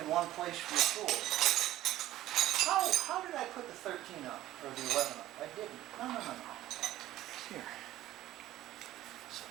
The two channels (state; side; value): quieter; left; 14.6 dB